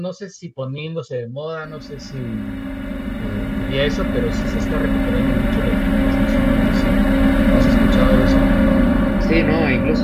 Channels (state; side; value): identical; both; correlation 1.00